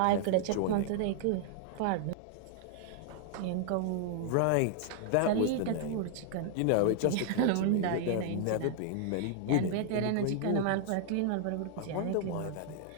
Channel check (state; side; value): different; both; correlation -0.01